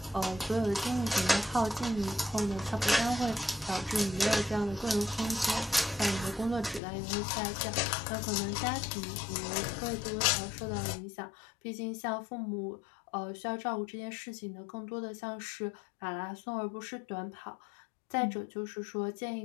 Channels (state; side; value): drops out; right; at 6.8 s